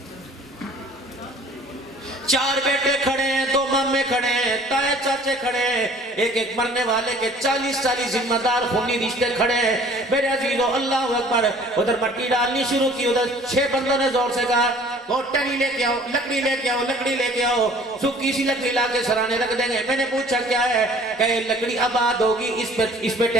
चार बेटे खड़े हैं, 2 मामे खड़े हैं, ताए चाचे खड़े हैं, एक एक मरने वाले के 40 जिम्मेदार खूनी रिश्ते खड़े हैं। मेरे अजीजों अल्लाह अकबर। उधर मट्टी डालनी शुरू की, उधर 6 बंदों ने जोर से कहा वो टनी लेके आओ, लकड़ी लेके आओ, लकड़ी लेके आओ। सूखी सी लकड़ी लाके सराने रख देंगे। मैंने पूछा क्या है? कहे लकड़ी आबाद होगी, इस पे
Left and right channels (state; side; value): normal; both; correlation 0.52